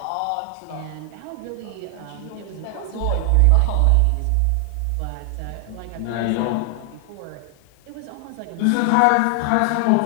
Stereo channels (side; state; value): both; different; correlation 0.00